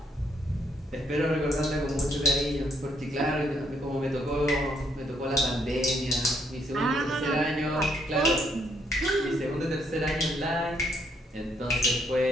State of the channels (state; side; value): normal; both; correlation 0.71